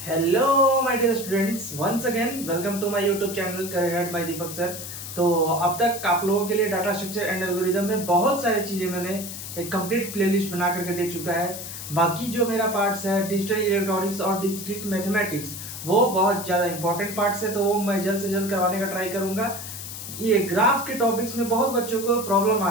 Hello my dear students, once again welcome to my YouTube channel career by Deepak sir. तो अब तक आप लोगों के लिए डाटा स्ट्रक्चर एंड एल्गोरिदम में बहुत सारी चीज़ें मैंने एक कंप्लीट प्लेलिस्ट बना करके दे चुका है। बाकी जो मेरा पार्ट्स है डिजिटल इलेक्ट्रॉनिक्स और डिस्क्रीट मैथमेटिक्स, वो बहुत ज़्यादा इंपॉर्टेंट पार्ट्स है, तो वो मैं जल्द से जल्द करवाने का ट्राई करूँगा। ये ग्राफ के टॉपिक्स में बहुत बच्चों को प्रॉब्लम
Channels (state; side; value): noise; left; hiss, 9 dB below the sound